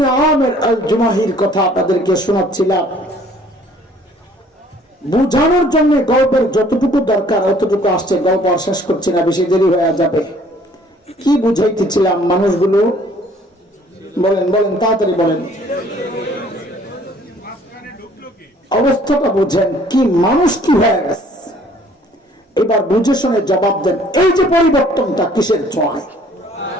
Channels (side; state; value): both; normal; correlation 0.57